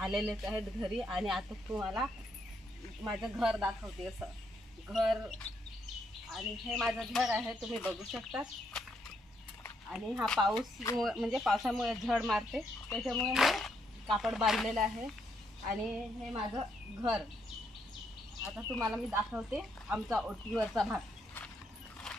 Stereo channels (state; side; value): normal; both; correlation 0.75